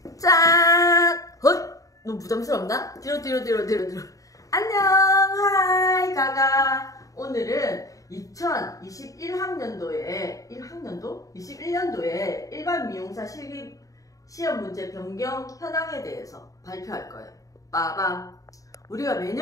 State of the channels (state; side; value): late; right; 0.16 ms